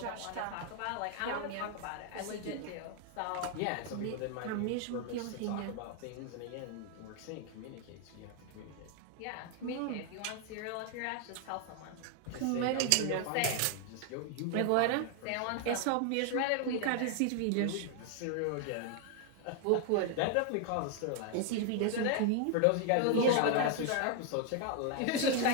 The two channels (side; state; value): both; different; correlation 0.00